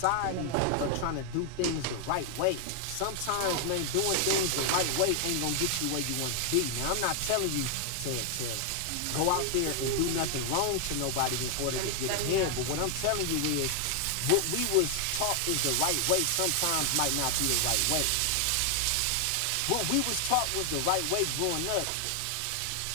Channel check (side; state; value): both; different; correlation 0.00